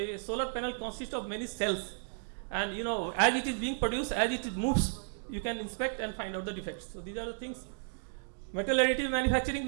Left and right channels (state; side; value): silent; left; digital silence